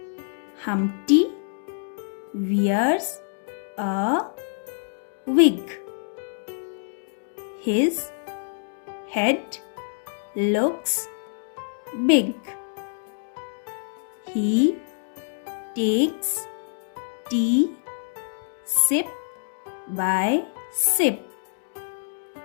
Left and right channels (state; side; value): silent; right; digital silence